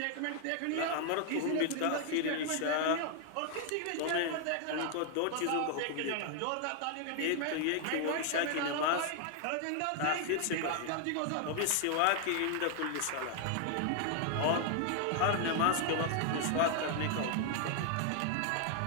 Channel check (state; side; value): different; both; correlation 0.00